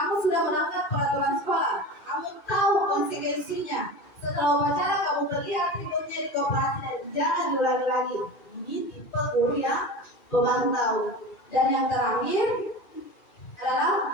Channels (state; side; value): late; right; 2.4 ms